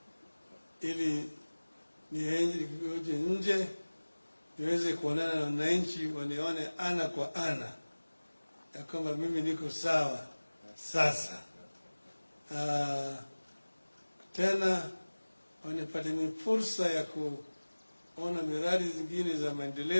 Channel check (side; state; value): both; inverted; correlation -1.00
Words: ili niende nje niweze kuonana na wananchi, wanione ana kwa ana ya kwamba mimi niko sawa sasa. Tena wanipate ni fursa ya kuona miradi zingine za